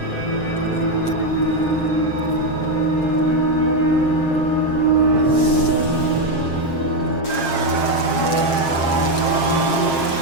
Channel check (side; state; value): right; late; 7.5 ms